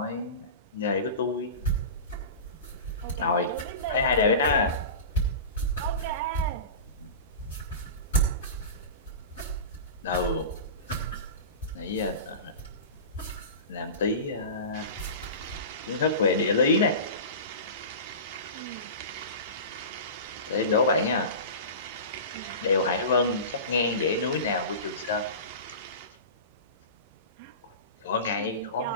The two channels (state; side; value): inverted; both; correlation -0.30